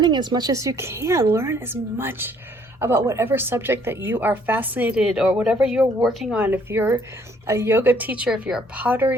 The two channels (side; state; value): both; normal; correlation 0.63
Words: as much as you can. Learn as much about whatever subject that you are fascinated, or whatever you're working on. If you're a yoga teacher, if you're a